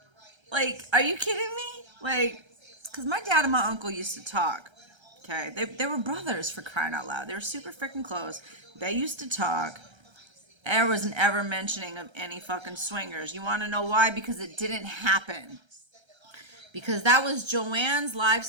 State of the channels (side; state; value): left; late; 1.3 ms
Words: like, are you kidding me? Like, because my dad and my uncle used to talk. Okay, they were brothers, for crying out loud. They were super freaking close. They used to talk. There wasn't ever mentioning of any fucking swingers. You want to know why? Because it didn't happen. Because that was Joanne's